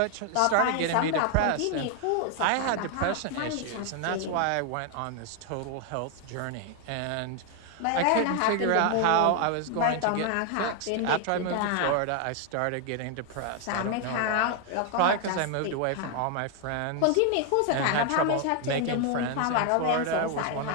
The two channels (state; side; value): different; both; correlation 0.00